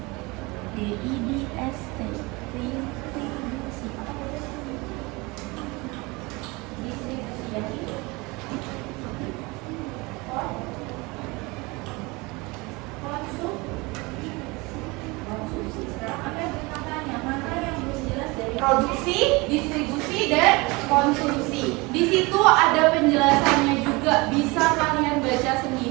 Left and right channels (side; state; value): left; quieter; 24.9 dB